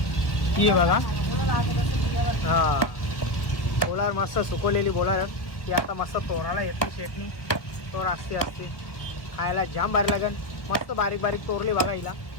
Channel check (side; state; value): right; late; 1.3 ms